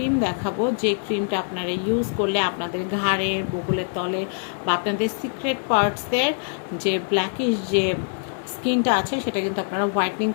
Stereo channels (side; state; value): right; silent; digital silence